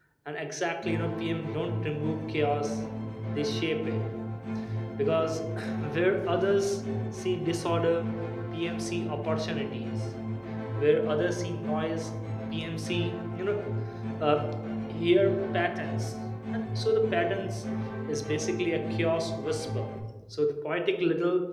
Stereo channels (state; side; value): identical; both; correlation 1.00